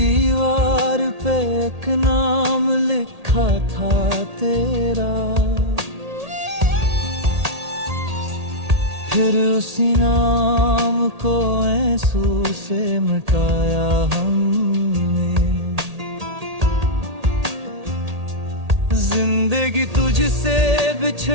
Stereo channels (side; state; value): left; late; 1.8 ms